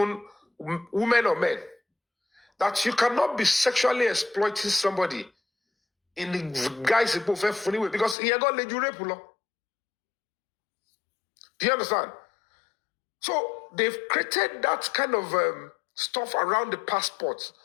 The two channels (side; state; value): right; drops out; at 8.2 s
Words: women or men. That you cannot be sexually exploiting somebody in the guise of funny way because he got led you rape law. Do you understand? So they've created that kind of stuff around the passport.